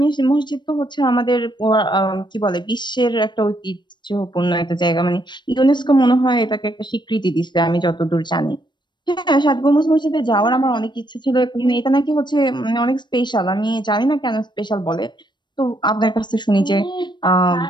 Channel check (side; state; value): right; late; 0.22 ms